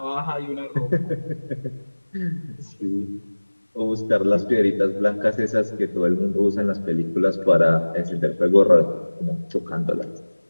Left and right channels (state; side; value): inverted; both; correlation -1.00